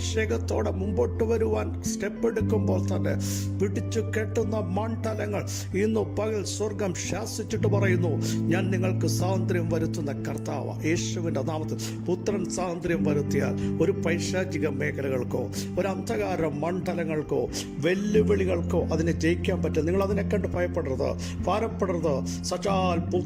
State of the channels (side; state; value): both; identical; correlation 1.00